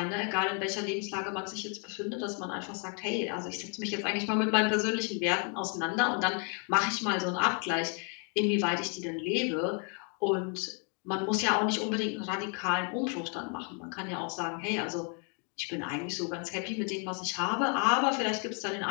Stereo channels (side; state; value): right; quieter; 39.3 dB